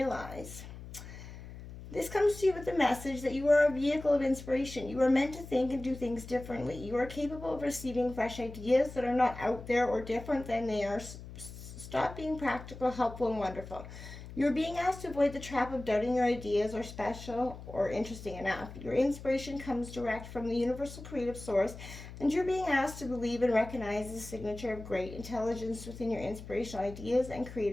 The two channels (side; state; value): left; noise; hum, 13 dB below the sound